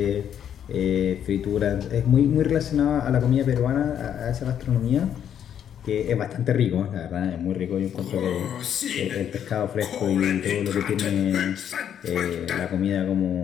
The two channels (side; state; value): right; quieter; 9.3 dB